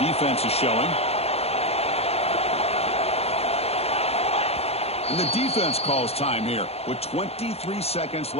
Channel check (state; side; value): late; right; 0.30 ms